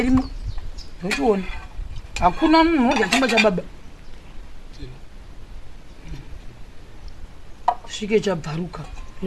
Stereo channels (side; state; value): both; identical; correlation 1.00